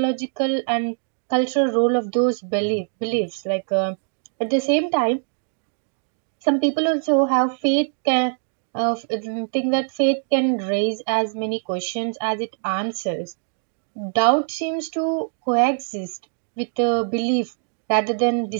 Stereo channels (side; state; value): left; silent; digital silence